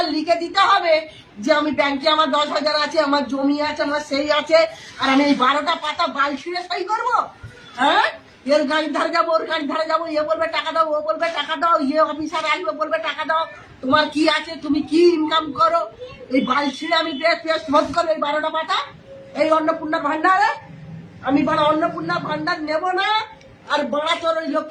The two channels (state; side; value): identical; both; correlation 1.00